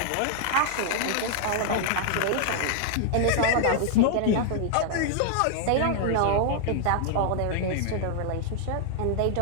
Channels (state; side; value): different; both; correlation 0.00